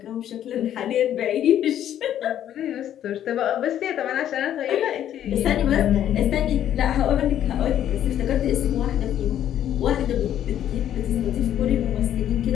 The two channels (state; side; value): quieter; right; 10.9 dB